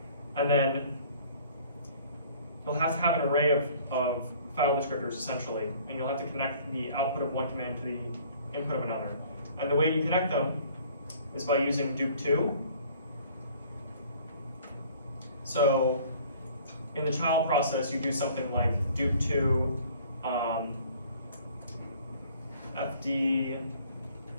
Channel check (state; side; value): inverted; both; correlation -0.53